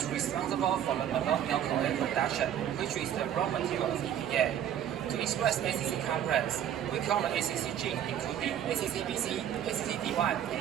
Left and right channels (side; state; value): left; quieter; 10.1 dB